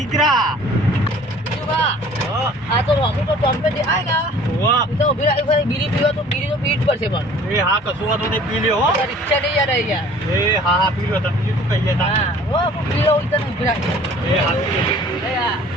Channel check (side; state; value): both; normal; correlation 0.50